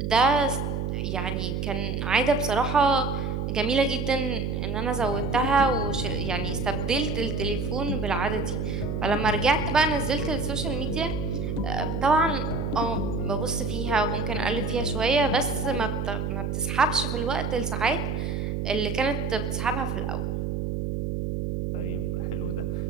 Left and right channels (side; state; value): right; noise; hum, 2 dB below the sound